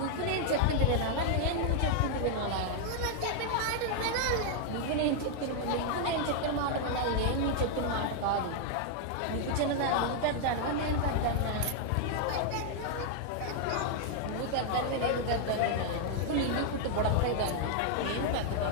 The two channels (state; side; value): different; both; correlation 0.00